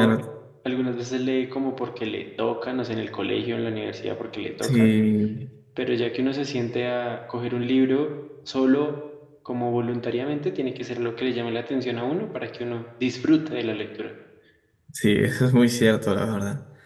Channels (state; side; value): identical; both; correlation 1.00